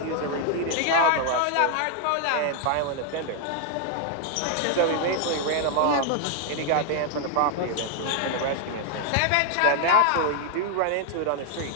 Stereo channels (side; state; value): both; different; correlation 0.00